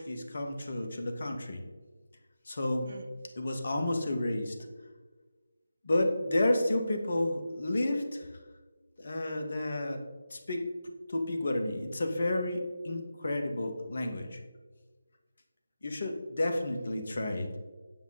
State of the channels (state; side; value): inverted; both; correlation -0.92